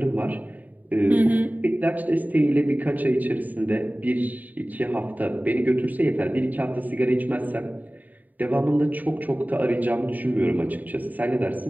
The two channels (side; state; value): left; late; 0.082 ms